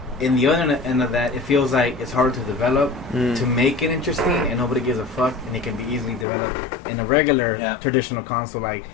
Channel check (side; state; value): right; drops out; at 6.2 s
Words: in the other end of that, it feels like it's hard to develop to make it interesting, and nobody gives a fuck, and it can be easily developed in a regular traditional console like